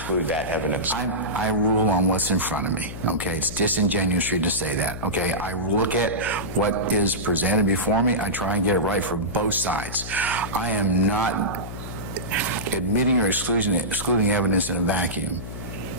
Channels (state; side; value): noise; left; hum, 10 dB below the sound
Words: that evidence. I rule on what's in front of me, okay? It's disingenuous to say that, okay? I look at what is presented before me. I try and get it right for both sides. I am not admitting or excluding evidence in a vacuum.